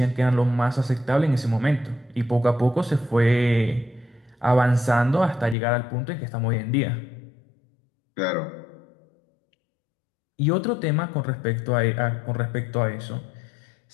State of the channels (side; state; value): right; drops out; at 5.6 s